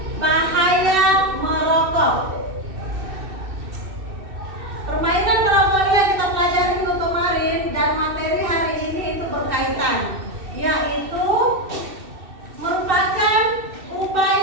bahaya merokok. Permainan merokok yang kita pelajari minggu kemarin dan materi hari ini itu berkaitan, yaitu merupakan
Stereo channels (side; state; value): left; late; 2.6 ms